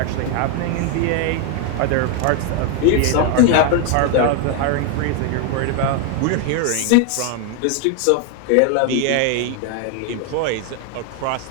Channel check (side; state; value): both; different; correlation 0.01